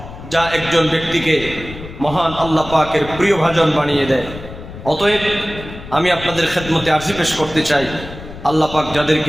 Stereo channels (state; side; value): noise; left; rumble, 13 dB below the sound